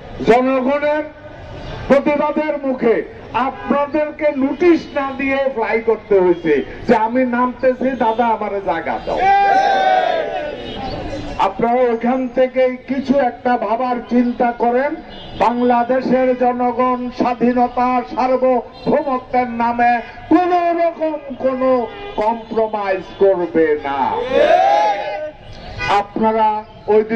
জনগণের প্রতিবাদের মুখে আপনাদেরকে নোটিশ না দিয়ে ফ্লাই করতে হয়েছে যে আমি নামতেছি, দাদা আমার জায়গা দাও। আপনারা ওইখান থেকে কিছু একটা ভাবার চিন্তা করেন। বাংলাদেশের জনগণ স্বাধীনতা, সার্বভৌমত্বের নামে কোন রকম কোন কম্প্রোমাইজ করবে না। আপনারা ওই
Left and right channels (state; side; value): identical; both; correlation 1.00